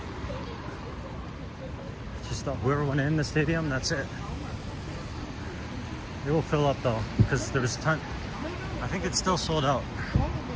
Just whoever went in the stadium, that's it. It will fill up though, because there was a ton. I think it's still sold out.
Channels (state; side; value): identical; both; correlation 1.00